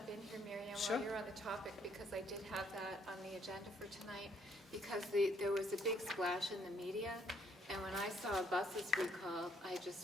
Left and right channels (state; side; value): normal; both; correlation 0.67